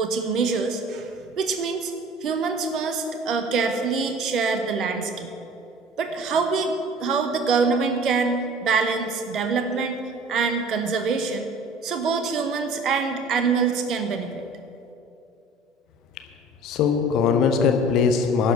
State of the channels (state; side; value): normal; both; correlation 0.45